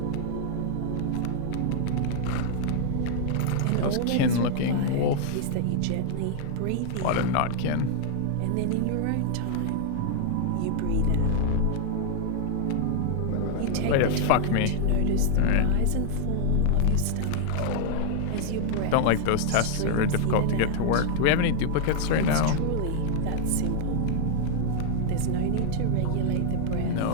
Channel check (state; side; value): different; both; correlation -0.01